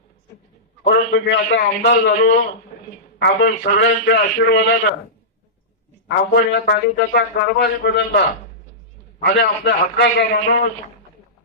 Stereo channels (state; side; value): normal; both; correlation -0.17